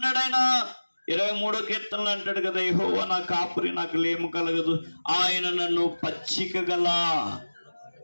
ఆయన? 23వ కీర్తనలు అంటాడు కదా, యెహోవా నా కాపురి, నాకు లేము కలగదు, ఆయన నన్ను పచ్చిక గల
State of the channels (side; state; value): both; inverted; correlation -1.00